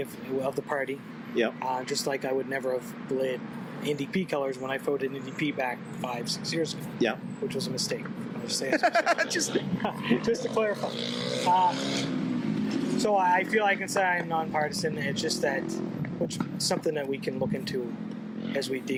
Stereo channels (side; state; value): both; identical; correlation 1.00